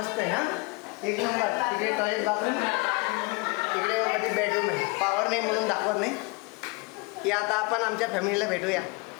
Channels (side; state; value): right; quieter; 28.1 dB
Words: आहे. हा एक नंबर. तिकडे टॉयलेट बाथरूम, तिकडे मध्ये बेडरूम आहे. पावर नाही म्हणून दाखवत नाही की आता आपण आमच्या फॅमिलीला भेटूया.